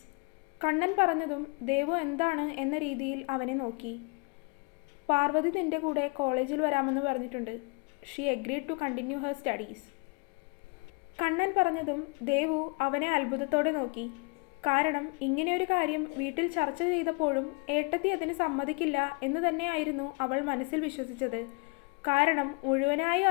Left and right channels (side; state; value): right; quieter; 31.8 dB